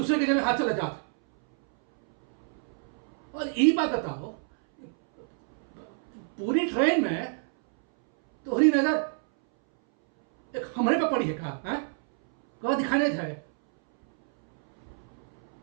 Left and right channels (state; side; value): silent; left; 60 dB below the other